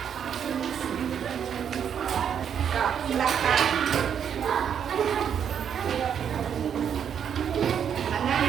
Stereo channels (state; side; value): quieter; left; 8.2 dB